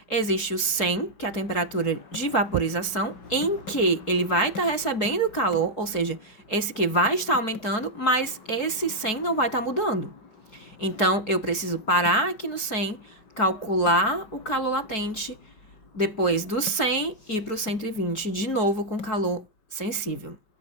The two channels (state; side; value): late; right; 4.6 ms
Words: existe o 100, que é a temperatura de vaporização, em que ele vai estar recebendo calor, ou seja, esse que vai estar aumentando, mas esse 100 não vai estar mudando. Então, eu preciso parar aqui no 100, calcular o calor latente, depois do 100 ir para o 120, de novo com calor sensível.